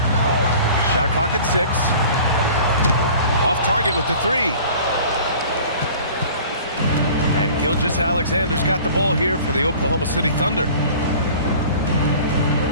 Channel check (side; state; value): both; inverted; correlation -0.45